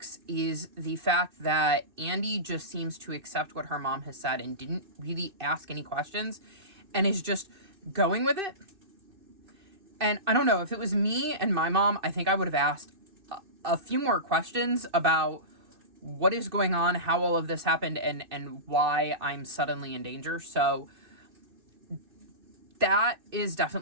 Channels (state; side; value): late; left; 2.6 ms